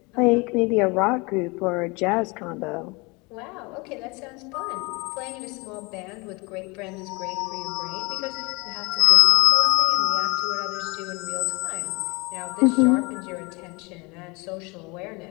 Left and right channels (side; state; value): right; quieter; 27.1 dB